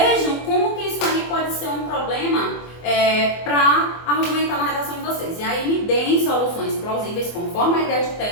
como que isso aí pode ser um problema para argumentar na redação de vocês. E aí me deem soluções soluções plausíveis conforme a ideia de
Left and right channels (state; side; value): late; right; 24 ms